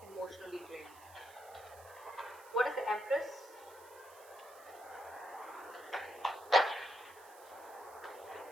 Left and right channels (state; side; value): noise; right; hiss, 21 dB below the sound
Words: emotionally drained. What is the Empress?